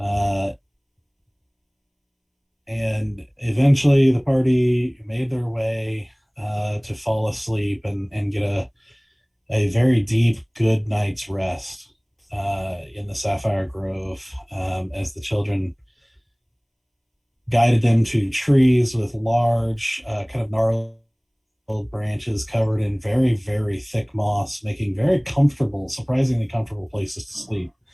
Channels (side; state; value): both; identical; correlation 1.00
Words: And eventually, the party made their way to fall asleep and get a very deep, good night's rest in the Sapphire Grove, as the children guided them to trees with large, kind of gnarled branches covered in very, very thick moss, making very comfortable, surprisingly comfortable places to sleep.